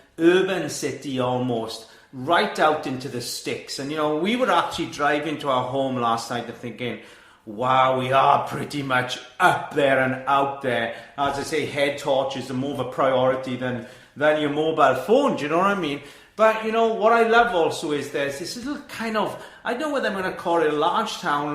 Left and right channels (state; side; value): identical; both; correlation 1.00